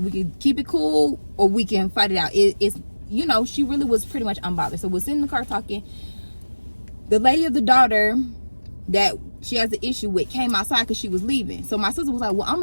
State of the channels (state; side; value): inverted; both; correlation -1.00